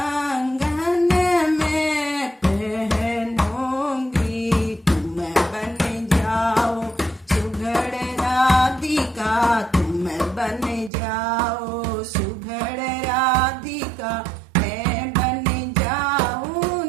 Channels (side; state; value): left; drops out; at 10.9 s